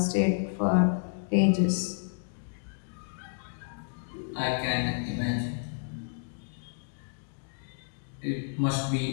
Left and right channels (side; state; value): right; silent; digital silence